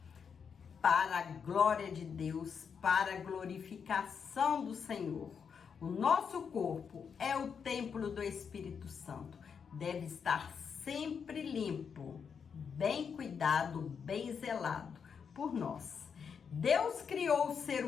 para a glória de Deus, para a glorificação do Senhor. O nosso corpo é o templo do Espírito Santo, deve estar sempre limpo, bem cuidado, bem zelado por nós. Deus criou o ser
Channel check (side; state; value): right; quieter; 6.6 dB